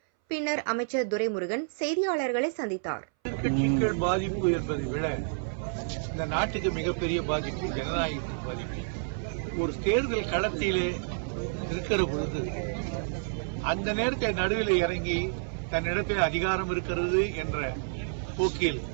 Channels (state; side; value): silent; left; 58 dB below the other